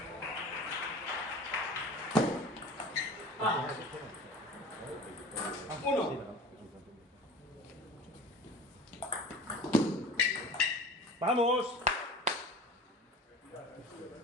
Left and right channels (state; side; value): normal; both; correlation 0.39